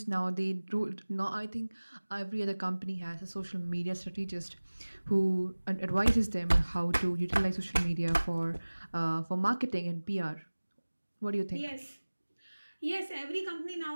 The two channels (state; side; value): inverted; both; correlation -1.00